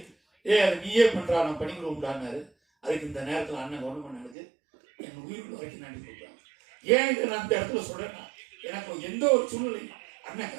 அது நீயே பண்றா, நான் பண்ணிக்கிறோம்டான்னாரு. அதுக்கு இந்த நேரத்தில் அண்ணன் கவுண்டமணிக்கு என் உயிர் வரைக்கும் நன்றி கொடுக்குறாங்க. ஏன் இதை நான் இந்த இடத்துல சொல்றேன்னா, எனக்கு எந்த ஒரு சூழ்நிலை அண்ணன்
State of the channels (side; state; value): left; drops out; at 4.4 s